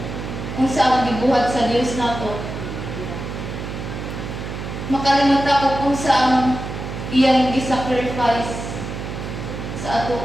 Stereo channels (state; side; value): noise; right; hum, 7 dB below the sound